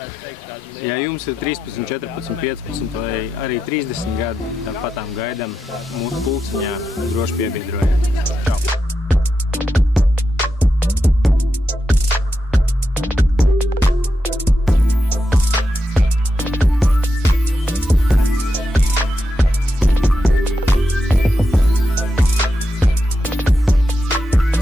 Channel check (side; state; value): both; normal; correlation 0.87